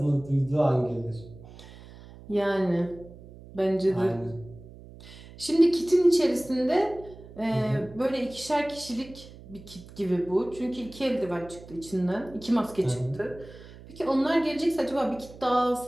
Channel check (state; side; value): noise; right; hum, 18 dB below the sound